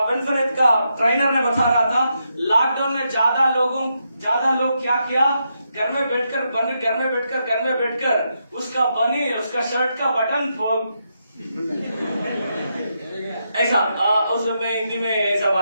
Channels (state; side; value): inverted; both; correlation -0.82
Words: विनफिनिट का ट्रेनर ने बता रहा था, लॉकडाउन में ज्यादा लोग क्या किया, घर में बैठकर उसका शर्ट का बटन ऐसा उसमें हिंदी में ऐसा